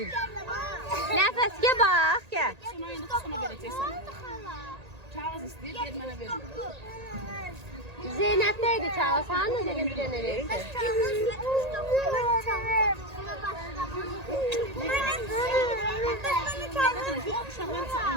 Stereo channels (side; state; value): left; late; 1.8 ms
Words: Nəfəs gel bax, gel. Kağız istəyir, ver mənə ver. Zeynep'teydi kağız. Hanı dedim bir dənə verirsin.